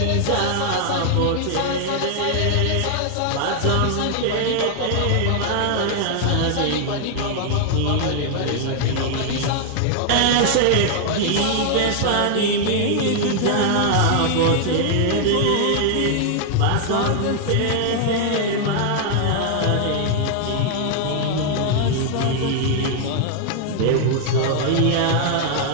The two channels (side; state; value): both; different; correlation 0.00